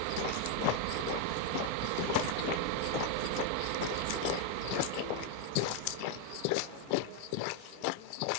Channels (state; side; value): different; both; correlation 0.01